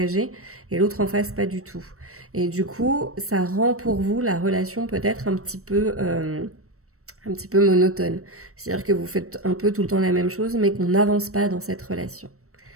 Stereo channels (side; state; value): left; late; 0.64 ms